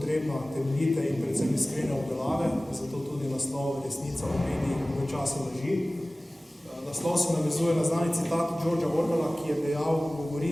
temeljite in predvsem iskrene obdelave, zato tudi naslov Resnica v medijih v času laži. Naslov se navezuje na znani citat Georgea Orwella, ki je dejal,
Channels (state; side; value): normal; both; correlation 0.98